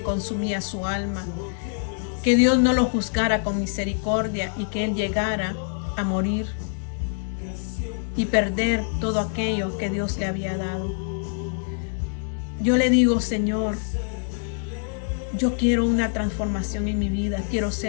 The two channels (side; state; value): right; silent; 62 dB below the other